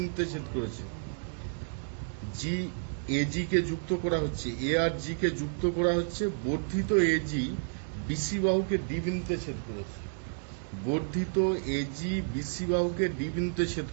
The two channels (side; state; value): left; silent; digital silence